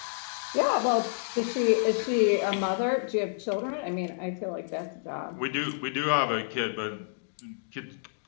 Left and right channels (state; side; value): silent; right; digital silence